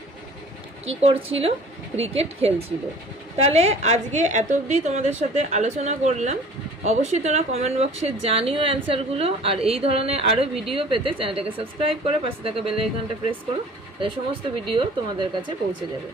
কি করছিল, ক্রিকেট খেলছিল। তাহলে আজকে এত অবধি তোমাদের সাথে আলোচনা করলাম, অবশ্যই তোমরা কমেন্ট বক্সে জানিও অ্যান্সারগুলো, আর এই ধরনের আরও ভিডিও পেতে চ্যানেলটাকে সাবস্ক্রাইব করে পাশে থাকা বেল আইকনটা প্রেস করো, তাহলে সমস্ত ভিডিও তোমাদের কাছে পৌঁছে যাবে।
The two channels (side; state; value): both; normal; correlation 0.47